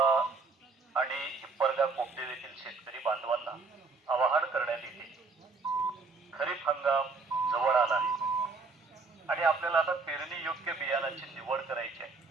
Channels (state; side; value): quieter; left; 4.2 dB